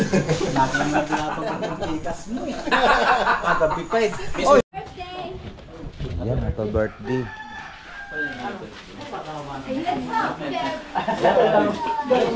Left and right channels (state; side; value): identical; both; correlation 1.00